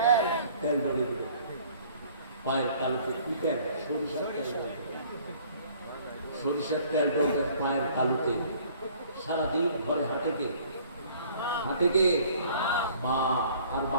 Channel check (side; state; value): both; inverted; correlation -0.55